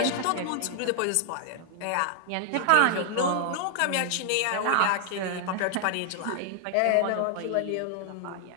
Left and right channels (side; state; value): both; different; correlation 0.00